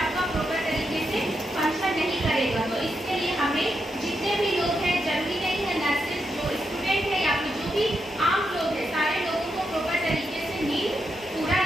प्रॉपर तरीके से फंक्शन नहीं करेगा। तो इसके लिए हमें जितने भी लोग हैं, जरूरी नहीं है नर्सेस, जो स्टूडेंट है या फिर जो भी आम लोग हैं, सारे लोगों को प्रॉपर तरीके से नींद पूरा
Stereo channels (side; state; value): both; normal; correlation 0.84